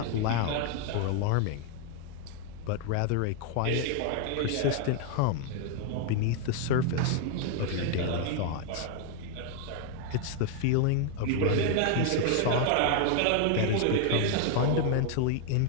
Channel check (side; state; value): both; different; correlation 0.00